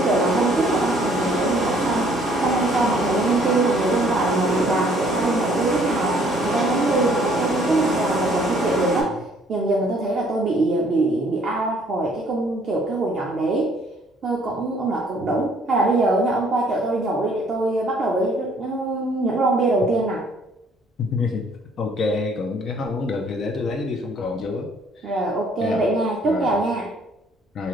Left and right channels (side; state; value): both; normal; correlation 0.61